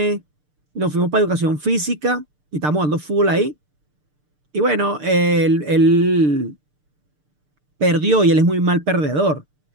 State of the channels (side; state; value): left; late; 6.7 ms